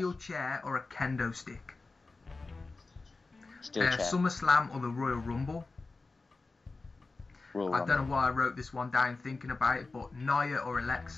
chair or a kendo stick? Steel chair. SummerSlam or the Royal Rumble? I don't know why I wrote this one down thinking about it, but Nia or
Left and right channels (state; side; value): quieter; right; 3.7 dB